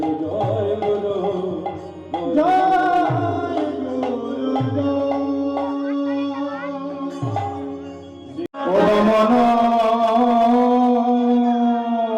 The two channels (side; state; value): both; identical; correlation 1.00